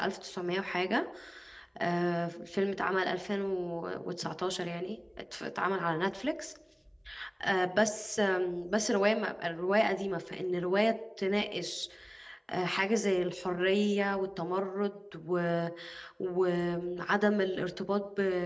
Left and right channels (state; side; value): identical; both; correlation 1.00